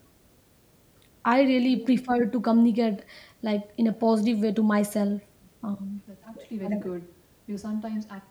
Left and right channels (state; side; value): identical; both; correlation 1.00